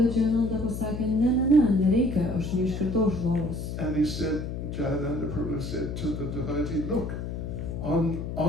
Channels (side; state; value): left; noise; hum, 5 dB below the sound